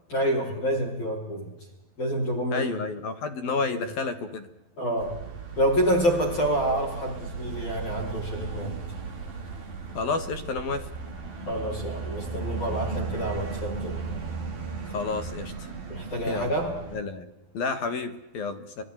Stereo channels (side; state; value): right; late; 12 ms